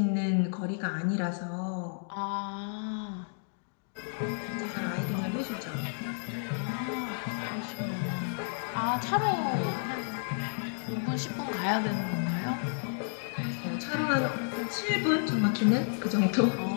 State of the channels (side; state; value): right; silent; digital silence